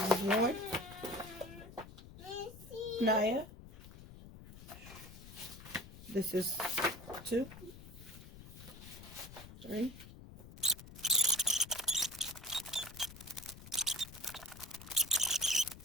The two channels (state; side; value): noise; left; rumble, 16 dB below the sound